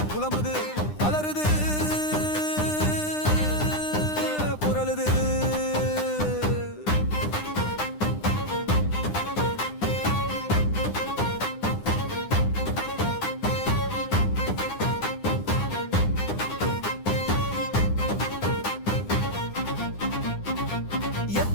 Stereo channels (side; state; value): right; late; 9.9 ms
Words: புலம்புது அலறுது புரளுது